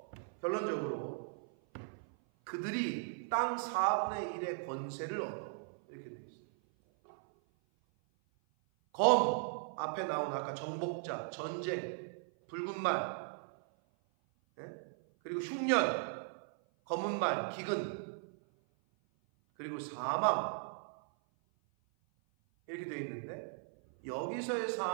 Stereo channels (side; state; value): left; silent; 53 dB below the other